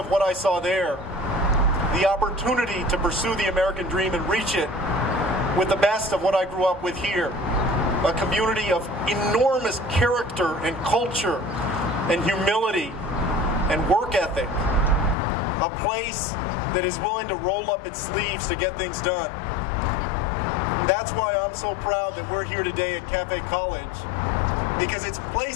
what I saw there, the opportunity to pursue the American dream and reach it, with the best of what I grew up with here. A community of enormous character and culture and humility and work ethic. A place that is willing to roll up its sleeves to get things done. And that's why I'm so proud that we're here today at Cafe College. Because it's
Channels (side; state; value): right; drops out; at 15.2 s